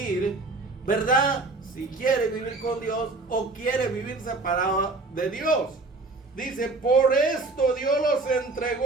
¿verdad?, si quiere vivir con Dios o quiere vivir separado de Dios. Dice, por esto Dios los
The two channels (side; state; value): left; quieter; 3.4 dB